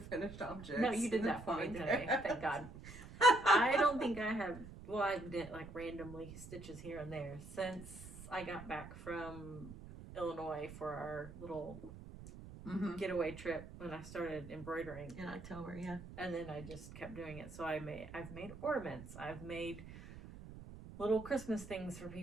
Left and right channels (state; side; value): noise; right; rumble, 14 dB below the sound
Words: finished objects. No, you did that for me today. Thank God. I don't think I have, well, I've knit like randomly stitches here and there since I got back from Illinois for our little getaway trip when I started embroidering. in October, yeah. And then I just kept doing it. So I've made ornaments. I've made little Christmas things for